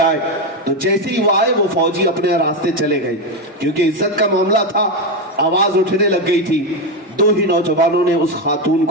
آئے، تو جیسے ہی وہ آئے وہ فوجی اپنے راستے چلے گئے، کیونکہ عزت کا معاملہ تھا، آواز اٹھنے لگ گئی تھی۔ 2 ہی نوجوانوں نے اس خاتون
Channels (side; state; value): both; normal; correlation 0.10